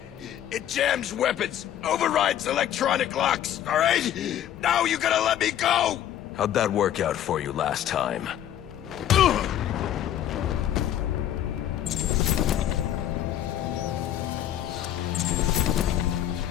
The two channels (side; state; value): right; quieter; 11.1 dB